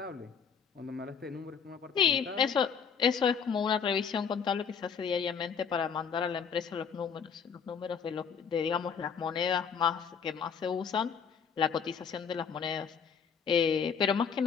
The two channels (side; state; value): right; quieter; 6.6 dB